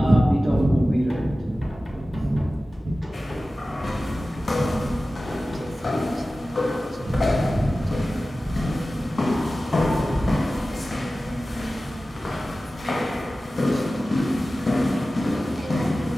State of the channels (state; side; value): normal; both; correlation 0.96